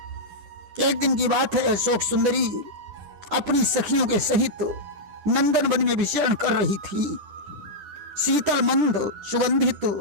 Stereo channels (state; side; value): late; left; 10 ms